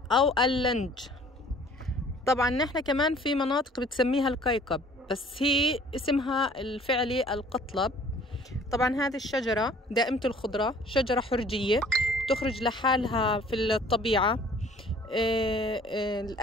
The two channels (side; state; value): both; normal; correlation 0.53